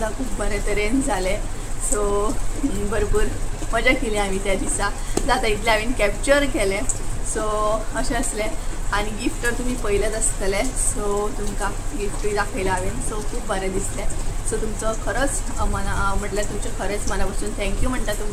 खूब बरे तरेन जालें. सो भरपूर मजा केली आमी त्या दिसा. जाता इतलें हांवें कॅप्चर केलें. सो अशें आसलें आनी गिफ्ट तर तुमी पयलेच आसतलें. सो तुमकां गिफ्टूय दाखयलें हांवें. सो खूब बरें दिसलें. सो तुमचो खरोच म्हटल्यार तुमचें खरेंच मना पासून थँक्यू म्हणटा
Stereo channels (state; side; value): identical; both; correlation 1.00